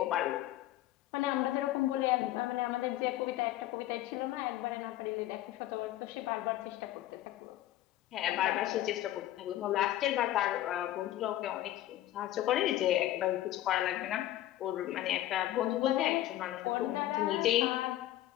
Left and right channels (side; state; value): right; quieter; 14.2 dB